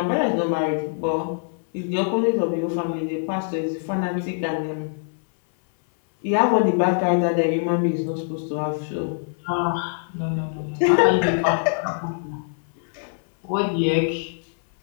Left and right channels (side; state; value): right; silent; 62 dB below the other